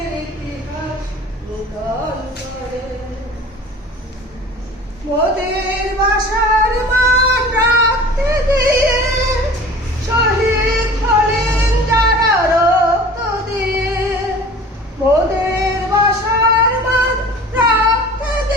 ইতিহাস নূতন করে। মোদের বাসার মান রাখতে গিয়ে শহীদ হলেন যারা রক্ত দিয়ে। মোদের বাসার মান রাখতে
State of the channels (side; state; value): both; normal; correlation 0.42